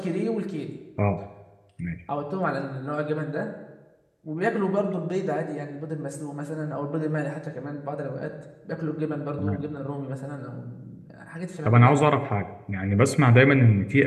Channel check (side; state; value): both; identical; correlation 1.00